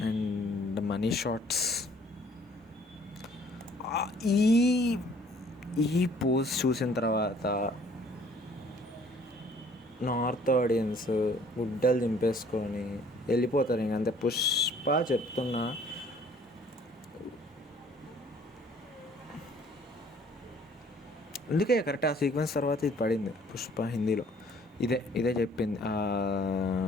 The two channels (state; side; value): normal; both; correlation 0.57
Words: అండ్ మనీ షాట్స్, ఈ పోజ్ చూసిన తర్వాత నార్త్ ఆడియన్స్ గుడ్డలు దింపేసుకొని వెళ్ళిపోతారు. ఇంక అంతే. పుష్ప చెప్తున్నా, అందుకే కరెక్ట్ ఆ సీక్వెన్స్ తర్వాత ఇది పడింది. పుష్ప హిందీలో ఇదే చెప్పింది.